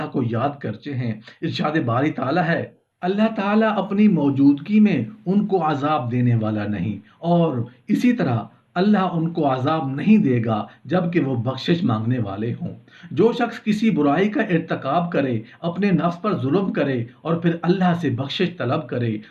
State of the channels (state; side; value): identical; both; correlation 1.00